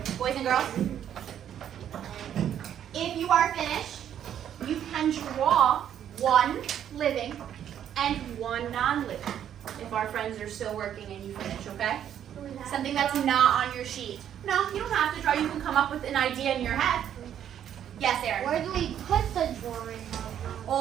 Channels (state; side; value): quieter; left; 9.9 dB